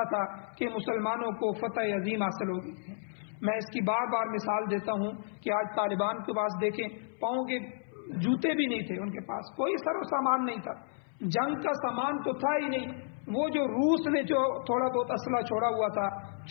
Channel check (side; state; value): right; silent; 57 dB below the other